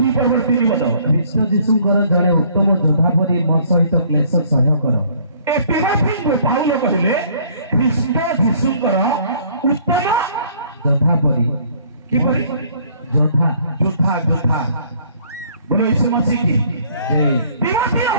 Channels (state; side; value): inverted; both; correlation -0.59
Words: ପଦ। ଖ୍ରୀଷ୍ଟ ଯୀଶୁଙ୍କର ଜଣେ ଉତ୍ତମ ଯୋଦ୍ଧା ପରି ମୋ ସହିତ କ୍ଲେଶ ସହ୍ୟ କର। ଏ ତିମୋଥୀଙ୍କୁ ପାଉଲ କହିଲେ ଖ୍ରୀଷ୍ଟ ଯୀଶୁଙ୍କର ଉତ୍ତମ ଯୋଦ୍ଧା ପରି। କିପରି? ଯୋଦ୍ଧା ଯୋଦ୍ଧା ଯୋଦ୍ଧା ବୋଲ ଯୀଶୁ ମସିହ କି ତିମୋଥୀ